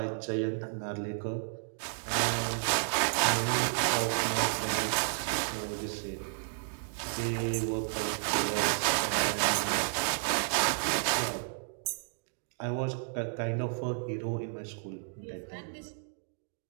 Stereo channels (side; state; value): left; silent; digital silence